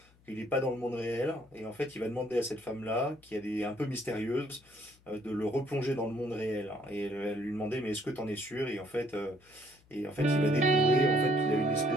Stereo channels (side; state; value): left; noise; hum, 29 dB below the sound